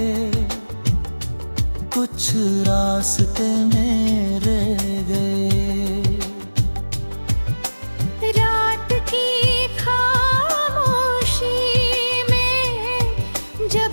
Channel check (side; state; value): both; inverted; correlation -1.00